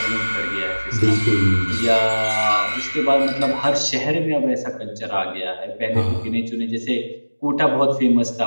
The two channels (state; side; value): inverted; both; correlation -1.00